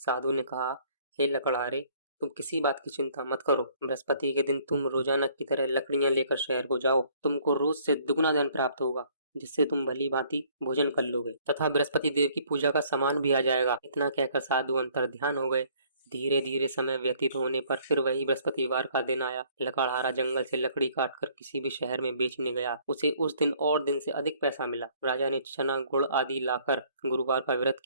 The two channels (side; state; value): both; inverted; correlation -0.60